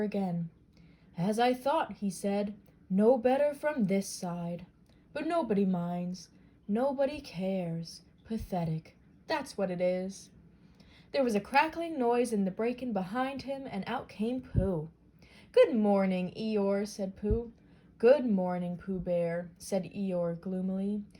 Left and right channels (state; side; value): identical; both; correlation 1.00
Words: again. "As I thought," he said, "no better from this side. But nobody minds. Nobody cares. Pathetic. That's what it is." There was a crackling noise in the bracken behind him, and out came Pooh. "Good morning, Eeyore," said Pooh. "Good morning, Pooh Bear," said Eeyore gloomily.